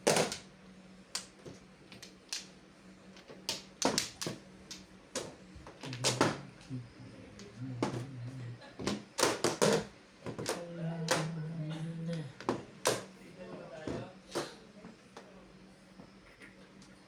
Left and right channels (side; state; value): both; identical; correlation 1.00